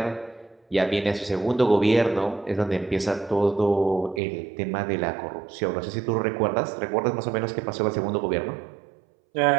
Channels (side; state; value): left; drops out; at 4.2 s